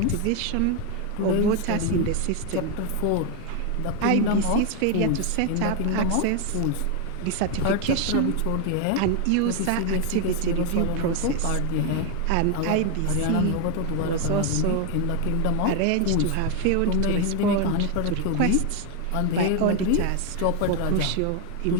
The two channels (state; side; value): different; both; correlation 0.01